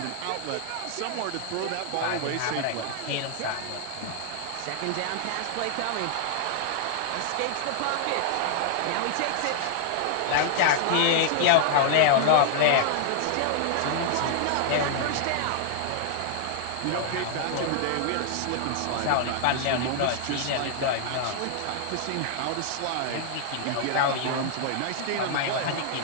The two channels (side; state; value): both; different; correlation -0.01